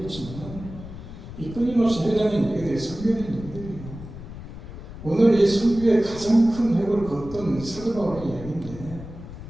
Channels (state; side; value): noise; left; rumble, 12 dB below the sound